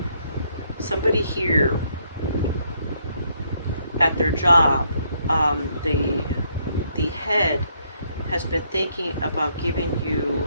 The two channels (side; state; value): both; inverted; correlation -0.71